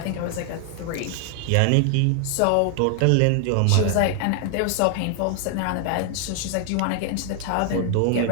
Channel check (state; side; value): different; both; correlation 0.00